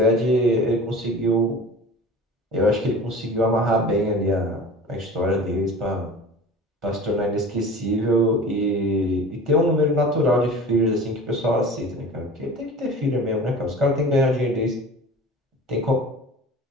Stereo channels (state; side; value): normal; both; correlation 0.39